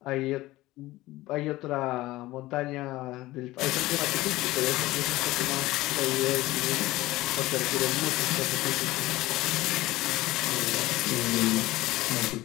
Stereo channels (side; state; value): right; quieter; 18.0 dB